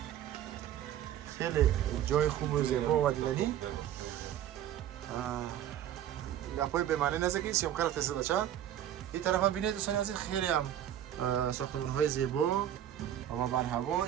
خیلی جای خوب و زیبا و دیدنی. گپای به معنی نزدیکی سیامکار فیصد بچه. این طرف هم ببینید دوستان عزیز خیلی هم ساختمان های زیبا و بر هوا.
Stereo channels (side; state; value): left; quieter; 11.0 dB